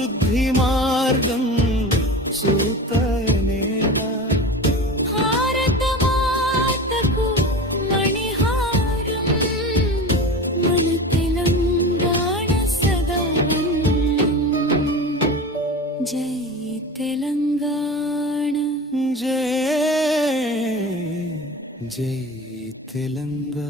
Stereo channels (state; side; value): normal; both; correlation 0.31